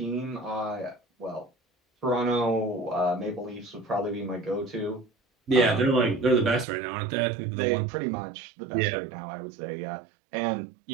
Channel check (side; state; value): left; drops out; at 6.7 s